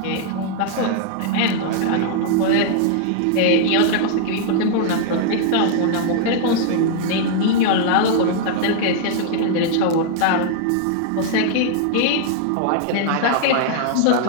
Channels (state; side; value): different; both; correlation -0.01